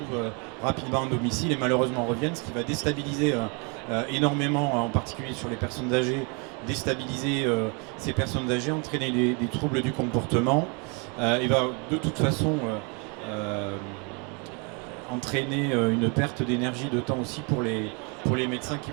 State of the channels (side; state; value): left; quieter; 33.7 dB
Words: rapidement en domicile et malheureusement reviennent, ce qui va déstabiliser énormément, en particulier sur les personnes âgées, déstabiliser ces personnes âgées, entraîner des troubles du comportement, et va de toute façon entraîner une perte d'énergie, de temps aussi pour les médecins qui